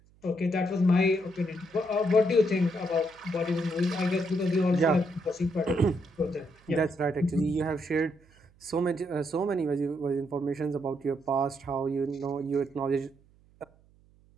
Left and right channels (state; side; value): noise; right; hum, 30 dB below the sound